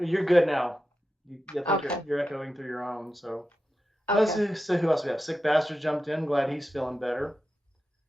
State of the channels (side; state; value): both; normal; correlation 0.90